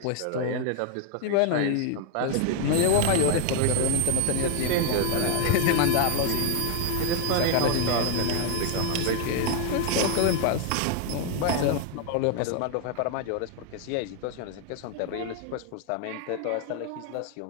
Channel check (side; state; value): both; different; correlation 0.00